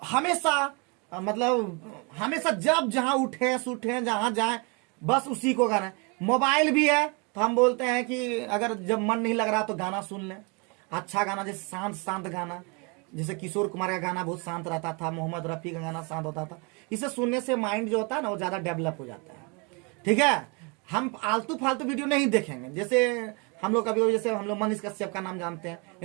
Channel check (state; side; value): quieter; left; 31.7 dB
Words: हमेशा जब जहां उठे सूठे जहां जाए बस उसी को करें। मोबाइल भी है तो हम बोलते हैं कि अगर जब मन नहीं लग रहा तो गाना सुन लें। अच्छा गाना, जैसे शांत गाना, जैसे किशोर कुमार का गाना बहुत शांत रहता था, मोहम्मद रफी का गाना शांत होता था। इसे सुनने से माइंड जो होता है ना, वो ज्यादा डेवलप हो जाता है। ठीक है, हम आलतू फालतू वीडियो नहीं देखेंगे। जैसे हम लोग कभी, जैसे हम लोग मनीष कश्यप का नाम जानते हैं,